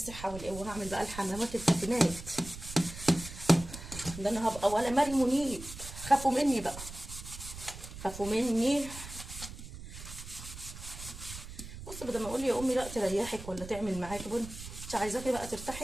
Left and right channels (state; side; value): noise; right; rumble, 12 dB below the sound